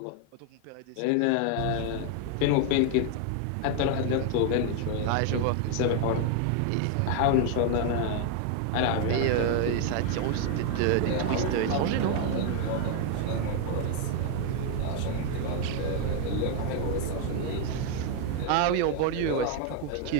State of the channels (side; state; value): both; different; correlation 0.00